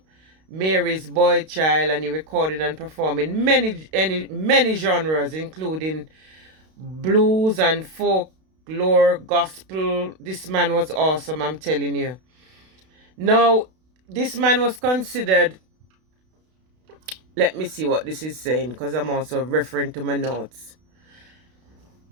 Mary's Boy Child, and he recorded and performed in many genres, including blues and folklore, gospel. This man was awesome, I'm telling you. Now, this man was considered, let me see what this is saying, because I'm also referring to my notes.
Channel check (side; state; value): left; late; 32 ms